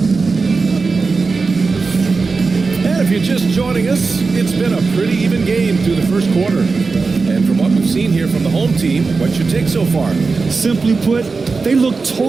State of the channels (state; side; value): quieter; left; 4.3 dB